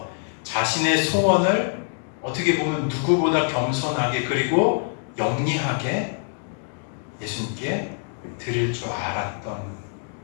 자신의 소원을 어떻게 보면 누구보다 겸손하게 그리고 영리하게 예수님께 드릴 줄 알았던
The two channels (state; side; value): silent; right; digital silence